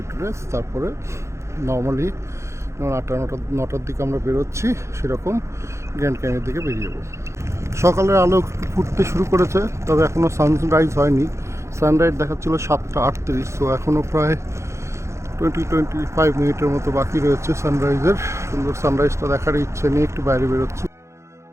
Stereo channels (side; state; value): left; late; 0.14 ms